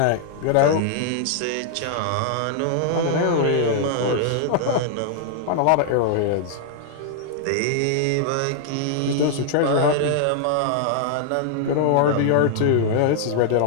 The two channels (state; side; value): different; both; correlation -0.01